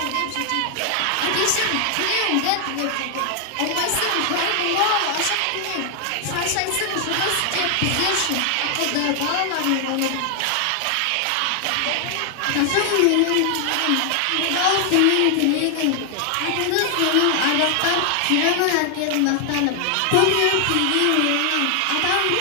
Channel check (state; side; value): different; both; correlation 0.00